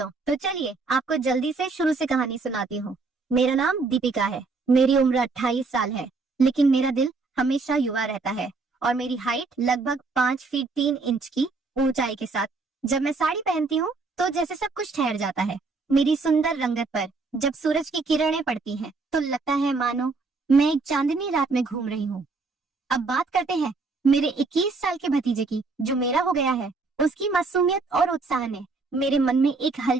तो चलिए आपको जल्दी से शुरू से कहानी सुनाती हूँ। मेरा नाम दीपिका है, मेरी उम्र 28 साल है, लेकिन मेरा दिल हमेशा युवा रहता है और मेरी हाइट लगभग 5 फीट 3 इंच की ऊंचाई के साथ जब मैं साड़ी पहनती हूँ तो जैसे सब कुछ ठहर जाता है। मेरी सुंदर रंगत पर जब सूरज की किरणें पड़ती हैं तो लगता है मानो मैं एक चांदनी रात में घूम रही हूँ। अब बात करते हैं मेरे 21 साल के भतीजे की, जो मेरा हो गया है। उसकी मासूमियत और उत्साह ने मेरे मन में एक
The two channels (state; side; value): quieter; left; 4.0 dB